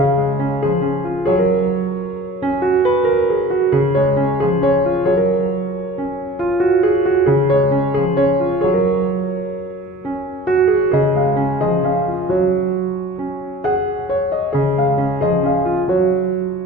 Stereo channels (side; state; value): both; normal; correlation 0.44